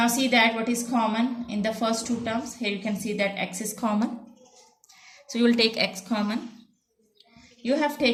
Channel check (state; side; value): identical; both; correlation 1.00